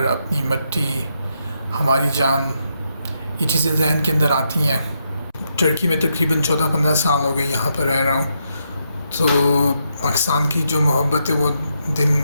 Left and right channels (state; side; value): inverted; both; correlation -0.80